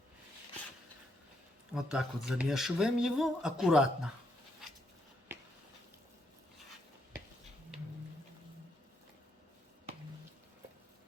Вот так вот замешиваем его аккуратно.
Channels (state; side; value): normal; both; correlation 0.76